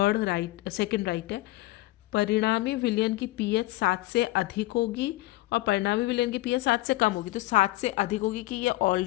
सेकंड राइट है। परिणामी विलयन की pH 7 से अधिक होगी और परिणामी विलयन की pH 7 से कम होगी। तो 7 से अधिक होगी कि ये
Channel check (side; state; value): right; quieter; 18.9 dB